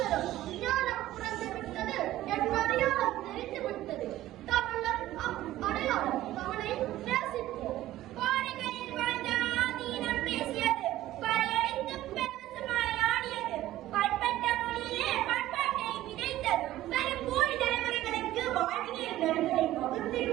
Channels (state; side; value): quieter; left; 14.8 dB